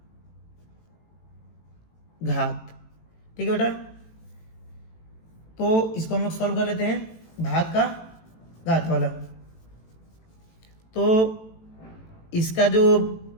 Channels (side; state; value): right; late; 18 ms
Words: घात। ठीक है बेटा, तो इसको हम लोग सॉल्व कर लेते हैं, भाग का घात वाला। तो इसका जो